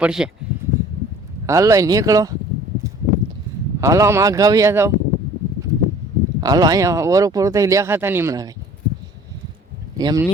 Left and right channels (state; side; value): normal; both; correlation 0.50